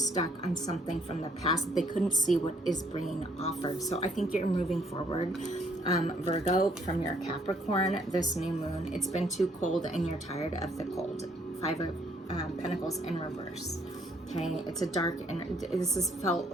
on something from the past that they couldn't see what is being offered. So I think you're moving forward, Virgo, from your Capricorn, this new moon. It's been too cold and you're tired of the cold. Five of Pentacles in reverse. Okay, it's a dark, and this has felt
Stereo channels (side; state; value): both; normal; correlation 0.66